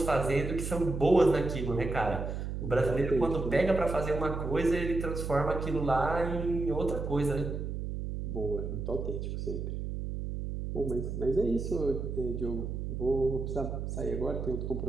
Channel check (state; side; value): noise; right; hum, 4 dB below the sound